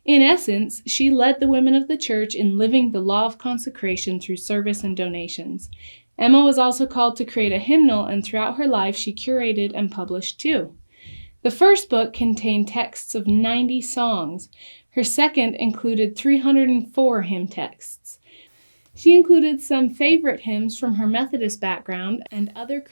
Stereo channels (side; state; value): both; inverted; correlation -1.00